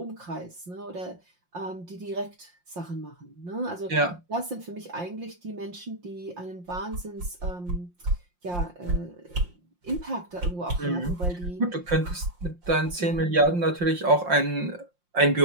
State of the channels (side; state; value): left; late; 5.7 ms